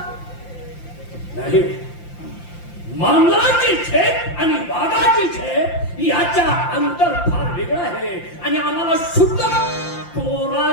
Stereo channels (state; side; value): late; right; 5.8 ms